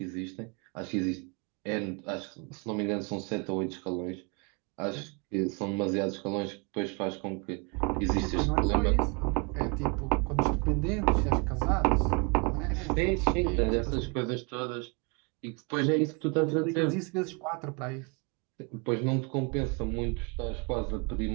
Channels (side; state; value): left; quieter; 32.5 dB